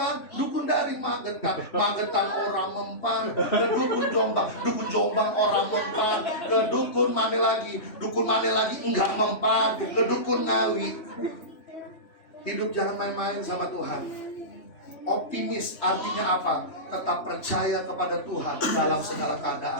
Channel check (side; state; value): right; late; 3.2 ms